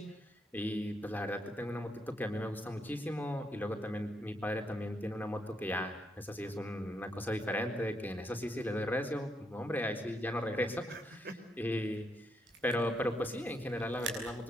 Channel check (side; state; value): both; normal; correlation 0.78